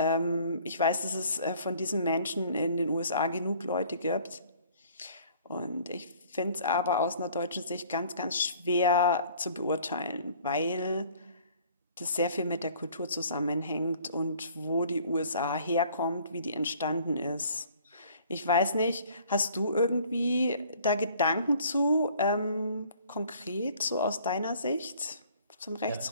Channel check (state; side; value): inverted; both; correlation -0.54